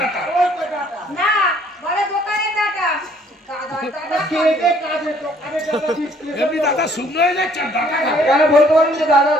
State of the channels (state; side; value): normal; both; correlation 0.61